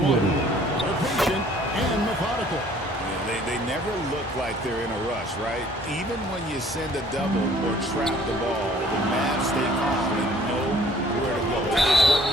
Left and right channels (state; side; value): normal; both; correlation 0.56